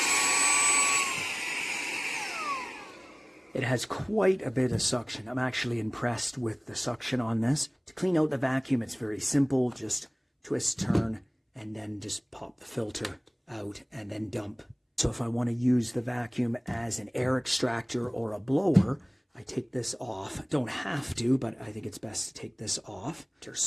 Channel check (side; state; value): both; identical; correlation 1.00